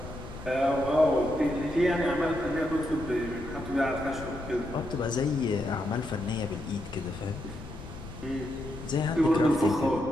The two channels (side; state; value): left; noise; rumble, 12 dB below the sound